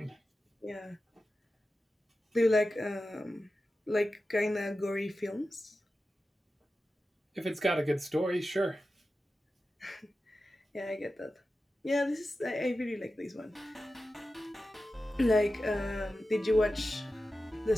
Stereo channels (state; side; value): normal; both; correlation 0.93